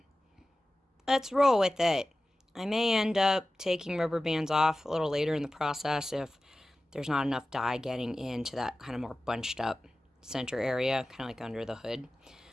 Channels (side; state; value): both; normal; correlation 0.96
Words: let's roll with it. I may end up taking rubber bands off a little later in the process if there's not enough dye getting into that kind of more bunched up center area, kind of like under the hood.